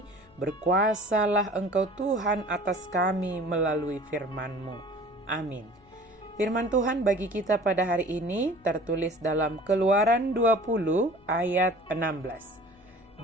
berkuasalah Engkau Tuhan atas kami melalui firman-Mu. Amin. Firman Tuhan bagi kita pada hari ini tertulis dalam Keluaran 20 ayat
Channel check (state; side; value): noise; left; hum, 29 dB below the sound